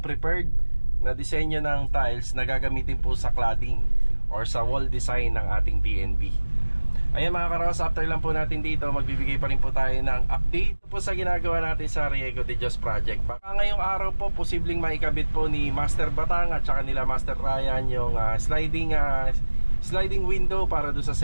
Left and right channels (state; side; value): inverted; both; correlation -1.00